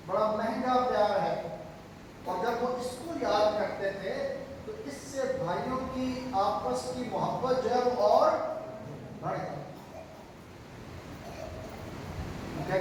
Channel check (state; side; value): identical; both; correlation 1.00